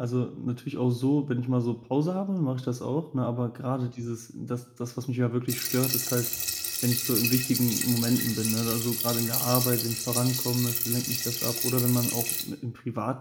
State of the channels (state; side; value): identical; both; correlation 1.00